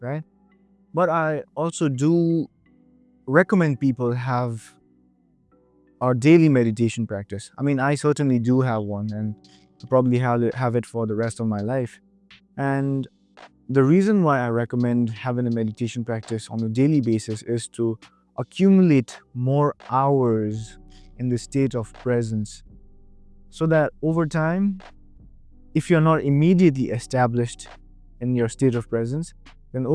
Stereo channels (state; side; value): identical; both; correlation 1.00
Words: right? But I also do recommend people have our daily meditation practice. I mean, I certainly do have one, and I probably have it for the rest of my life. And the reason why I recommend having a meditation practice on a daily basis is to accumulate more hours in the state of presence, so that over time, if you're not immediately established in your state of presence, then